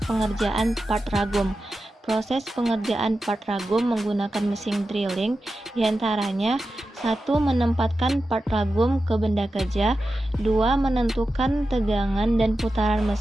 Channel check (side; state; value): both; normal; correlation 0.92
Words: pengerjaan part ragum. Proses pengerjaan part ragum menggunakan mesin drilling diantaranya: 1. Menempatkan part ragum ke benda kerja. 2. Menentukan tegangan dan putaran